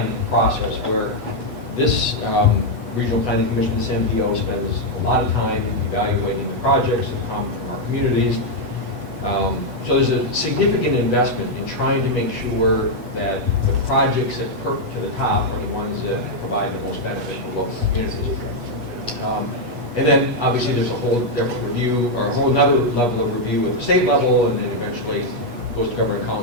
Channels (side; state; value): left; late; 8.2 ms